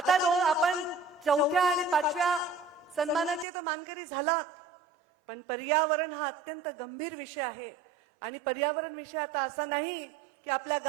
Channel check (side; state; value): left; drops out; at 3.5 s